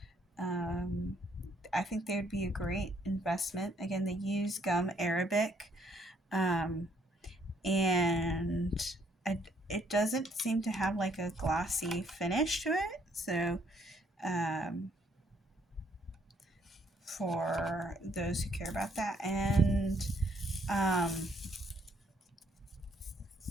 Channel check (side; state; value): both; normal; correlation 0.67